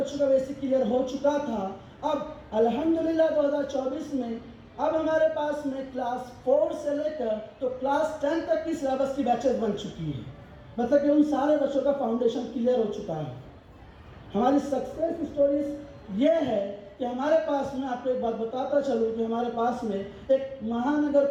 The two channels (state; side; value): identical; both; correlation 1.00